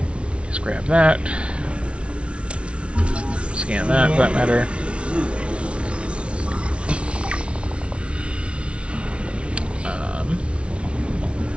Just grab that. Scan that, for that matter.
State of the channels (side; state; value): left; late; 0.060 ms